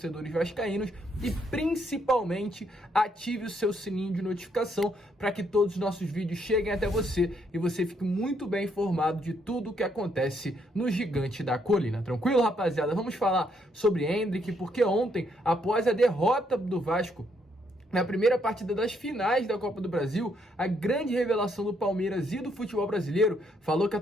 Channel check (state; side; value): normal; both; correlation 0.73